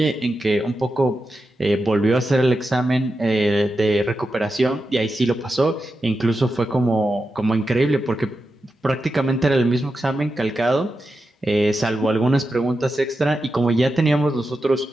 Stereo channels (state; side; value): normal; both; correlation 0.89